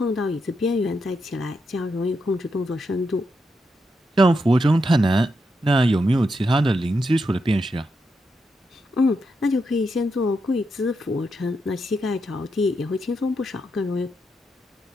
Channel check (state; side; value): normal; both; correlation 0.83